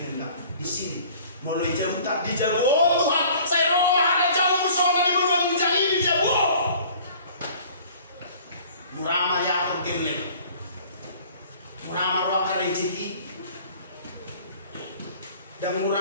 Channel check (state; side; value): inverted; both; correlation -0.50